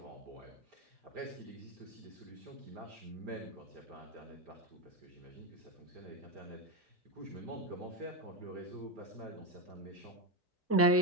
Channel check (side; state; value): both; normal; correlation 0.12